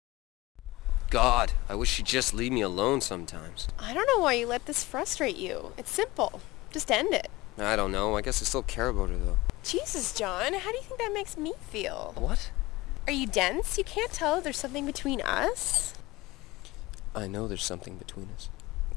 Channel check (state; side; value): quieter; right; 20.2 dB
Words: God, I wish she'd just leave me alone sometimes. I don't know why you let this frustrate you. It's simple. Just end it. I don't know. I guess I still care about her, though. Jesus, John, how do you think that makes me feel? What? Are you dense? You can't tell if there's something between us? I know there's something between us.